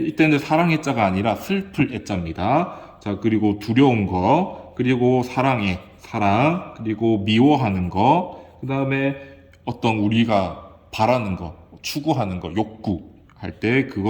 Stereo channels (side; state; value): both; identical; correlation 1.00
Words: 사랑의 자가 아니라 슬플 애자입니다. 자, 그리고 두려운 거, 그리고 사랑의 사랑, 그리고 미워하는 거, 그 다음에 어떤 우리가 바라는 거, 추구하는 거, 욕구 할 때